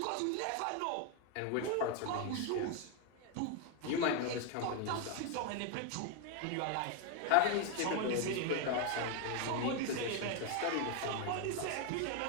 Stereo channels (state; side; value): different; both; correlation 0.01